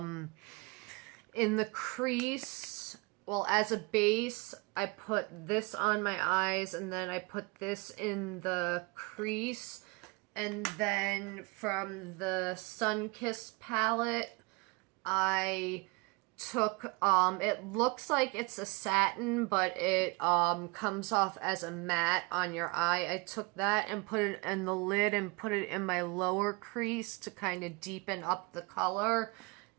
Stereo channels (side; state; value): left; quieter; 28.4 dB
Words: in the crease, well, as a base, I put this on my eyes, and then I put this in the crease. And then from the Sunkissed palette, I took, it looks like it's a satin, but it comes off as a matte on your eye. I took that and put it in the lid and put it in my lower crease to kind of deepen up the color.